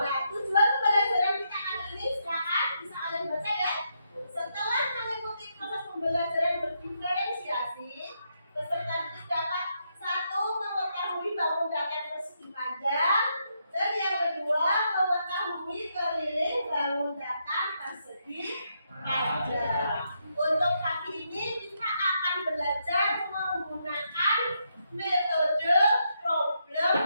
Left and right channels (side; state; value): both; inverted; correlation -0.79